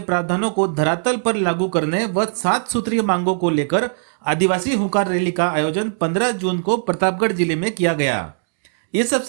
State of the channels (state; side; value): silent; left; digital silence